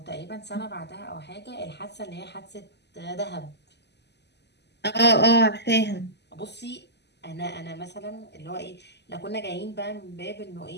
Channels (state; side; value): late; right; 0.50 ms